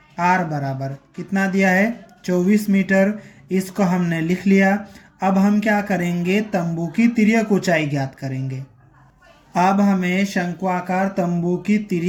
r बराबर कितना दिया है 24 मीटर। इसको हमने लिख लिया। अब हम क्या करेंगे, तंबू की तिर्यक ऊंचाई ज्ञात करेंगे। अब हमें शंक्वाकार तंबू की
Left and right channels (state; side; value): identical; both; correlation 1.00